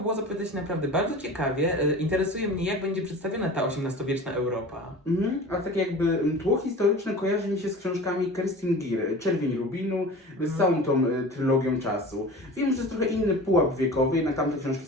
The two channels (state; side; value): normal; both; correlation 0.37